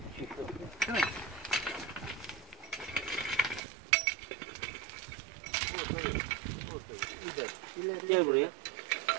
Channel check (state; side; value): drops out; left; at 3.6 s